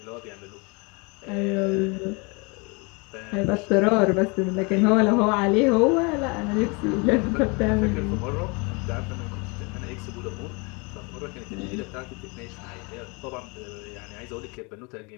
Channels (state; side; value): quieter; right; 30.0 dB